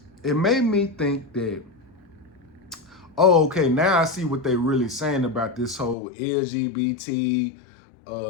It made me think that, oh, okay, now I see what they really saying about this whole LGBT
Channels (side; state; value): right; drops out; at 6.0 s